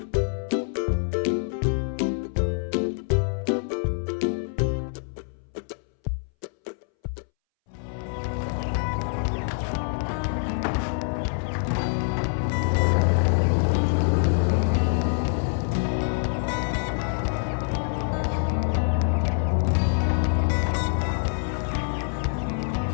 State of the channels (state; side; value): silent; right; 61 dB below the other